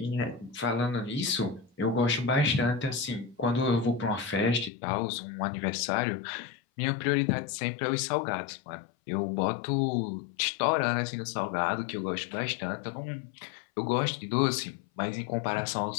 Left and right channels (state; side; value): drops out; right; at 4.7 s